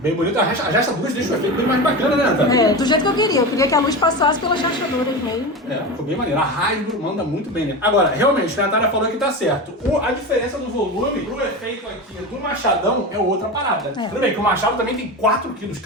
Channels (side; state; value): both; normal; correlation 0.24